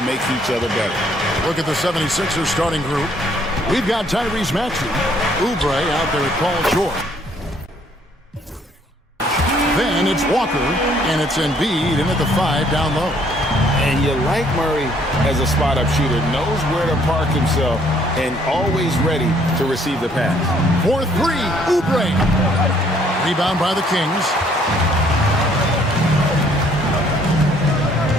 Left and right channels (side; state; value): both; normal; correlation 0.64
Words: make each other better. Look at the 76ers starting group. We've got Tyrese Maxey, Oubre out there at Paul George. Then it's Walker, and it's Embiid in at the 5 down low. And you like Murray as a spot-up shooter, knows where to park himself, and always ready to receive the pass. 4-3, Oubre. Rebound by the Kings.